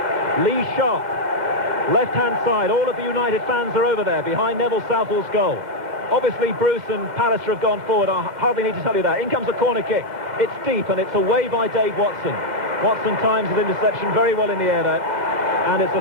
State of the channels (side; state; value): left; late; 2.0 ms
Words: Lee Sharp, left-hand side. All of the United fans are over there behind Neville Southall's goal. Obviously Bruce and Pallister have gone forward. I hardly need to tell you that. In comes a corner kick. It's deep and it's away by Dave Watson. Watson times his interception very well in the air there. And it's